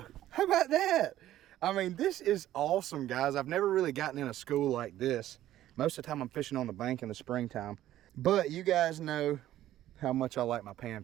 How about that? I mean, this is awesome, guys. I've never really gotten in a school like this. Most of the time I'm fishing on the bank in the springtime. But you guys know how much I like my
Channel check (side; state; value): left; quieter; 13.3 dB